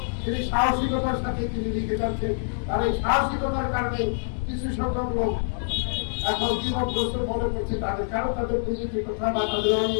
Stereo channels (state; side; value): silent; right; digital silence